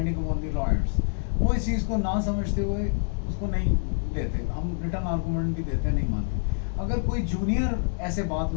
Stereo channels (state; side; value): silent; right; 56 dB below the other